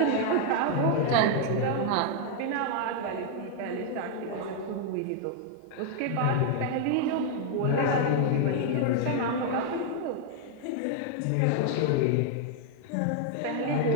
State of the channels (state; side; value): different; both; correlation 0.00